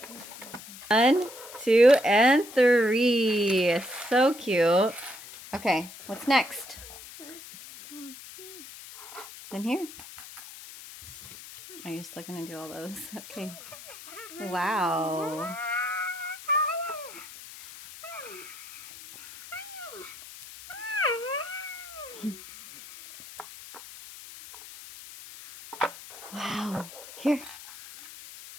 1, 2, and 3. So cute. Okay, what's next? In here. Oh, you're still gonna do all those. Okay. Wow. Wow. Here.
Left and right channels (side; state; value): left; noise; hiss, 15 dB below the sound